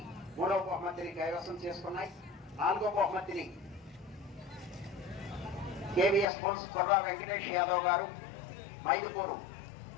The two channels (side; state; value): right; drops out; at 6.2 s